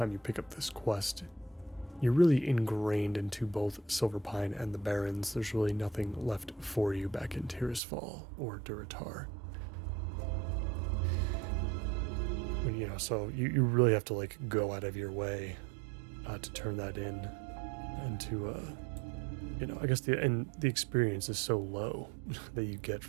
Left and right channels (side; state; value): left; drops out; at 7.8 s